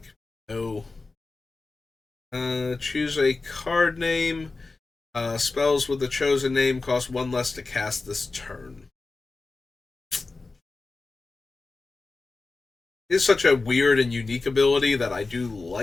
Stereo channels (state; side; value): quieter; right; 3.7 dB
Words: No. Choose a card name. Spells with the chosen name cost 1 less to cast this turn. It's such a weird and unique ability that I do